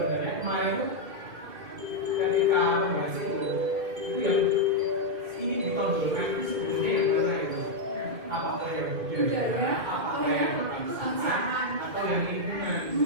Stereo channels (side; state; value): left; late; 2.2 ms